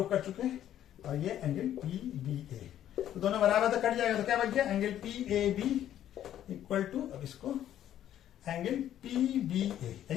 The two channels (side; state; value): right; quieter; 11.3 dB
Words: कर चुके हैं। और ये एंगल पी बी ए, तो दोनों बराबर तो कट जाएगा, तो क्या बच गया, angle P A B equal to, अब इसको एंगल पी बी ए,